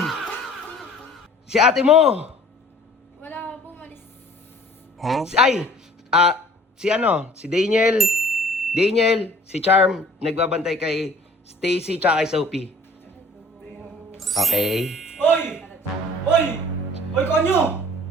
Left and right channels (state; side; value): normal; both; correlation 0.51